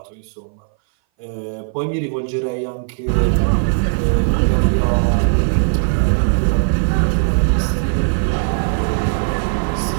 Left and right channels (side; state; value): left; silent; 60 dB below the other